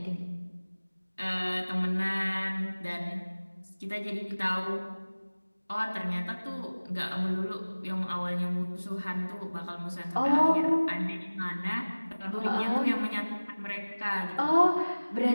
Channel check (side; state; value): both; inverted; correlation -1.00